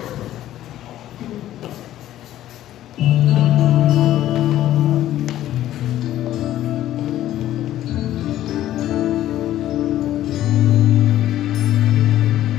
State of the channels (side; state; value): right; quieter; 13.1 dB